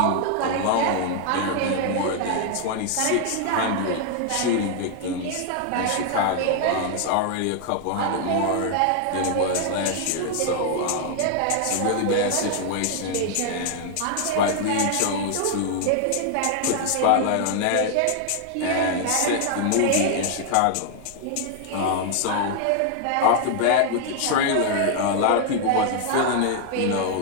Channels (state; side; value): different; both; correlation 0.00